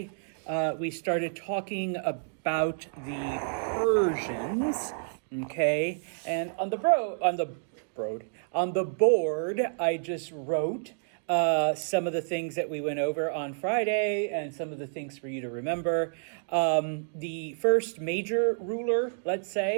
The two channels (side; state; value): left; silent; digital silence